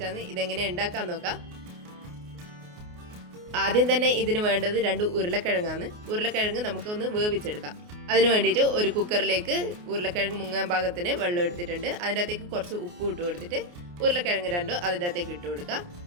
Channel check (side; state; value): left; late; 28 ms